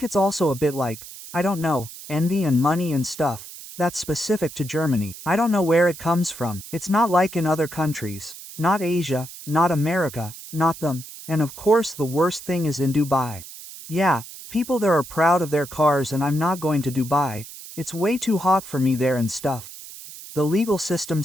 it's also a bit like, I don't know, envy and money and stuff. That's specific to Germany. I don't know where it comes from. It's not like in other countries. Not Asia, not America, not them. And of course the worst thing is in Dubai. Yeah, people there are proud of their cars and I'm not going to Dubai. It's way too hot for me there and stuff. The legal system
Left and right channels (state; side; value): noise; right; hiss, 14 dB below the sound